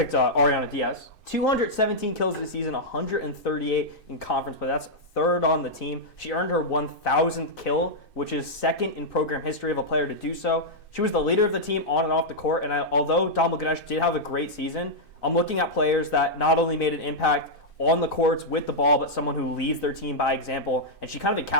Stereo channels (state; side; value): late; right; 2.6 ms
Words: Ariana Diaz. 217 kills this season, 138 in conference play. That's third on the team. She earned her 1,000th kill, which is second in program history of a player to do so. She was the leader of the team on and off the court, and although Dalma Ganesh did have a great season, I'm looking at players that not only made an impact on the courts with the ball, but someone who leads their team by example, and she kind of